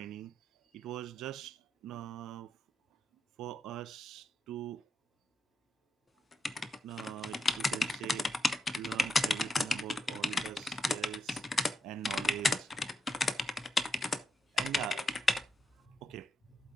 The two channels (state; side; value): normal; both; correlation 0.82